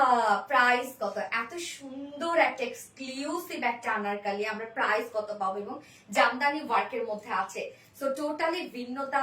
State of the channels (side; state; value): both; identical; correlation 1.00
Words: প্রাইস কত? এত সুন্দর একটা এক্সক্লুসিভ একটা আনারকালি আমরা প্রাইস কত পাবো? এবং জামদানি ওয়ার্কের মধ্যে আছে, সো টোটালি ভিন্নতা